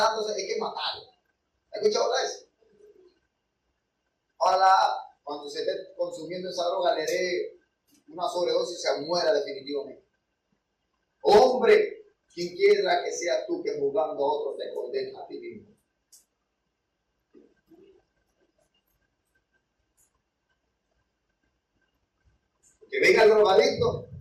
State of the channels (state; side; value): identical; both; correlation 1.00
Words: hay que matarlo. ¿Has escuchado eso? Ojalá cuando se esté consumiendo esa droga le dé una sobredosis y se muera definitivamente. Hombre, quien quiera que seas tú que juzgando a otros te condenas a ti mismo. Que venga el drogadicto